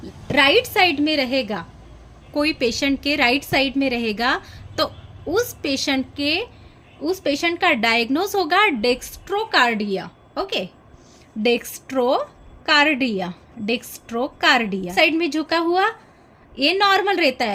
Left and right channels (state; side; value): identical; both; correlation 1.00